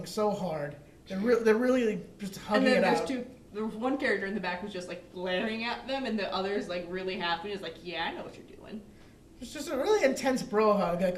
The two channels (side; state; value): both; identical; correlation 1.00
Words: so hard. They're really just hugging it out. There was one character in the back who's just like glaring at them, and the other's like really happy. He's like, "Yeah, I know what you're doing." It's just a really intense bro hug that